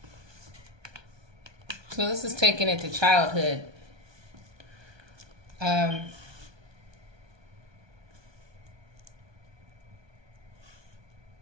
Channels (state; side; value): late; left; 1.2 ms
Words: So this is taking it to childhood.